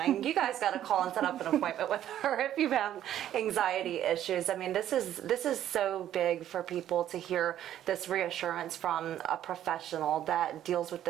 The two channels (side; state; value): left; quieter; 11.5 dB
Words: You guys got to call and set up an appointment with her if you have anxiety issues. I mean, this is so big for people to hear this reassurance from a professional that deals with